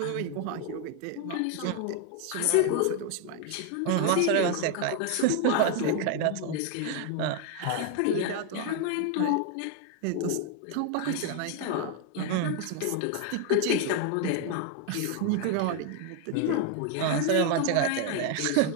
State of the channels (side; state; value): both; different; correlation 0.01